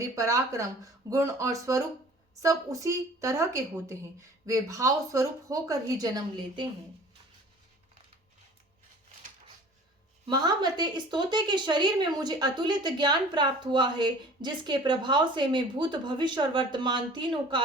पराक्रम, गुण और स्वरूप सब उसी तरह के होते हैं। वे भाव स्वरूप होकर ही जन्म लेते हैं। महामते, इस तोते के शरीर में मुझे अतुलित ज्ञान प्राप्त हुआ है, जिसके प्रभाव से मैं भूत, भविष्य और वर्तमान तीनों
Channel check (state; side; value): normal; both; correlation 0.47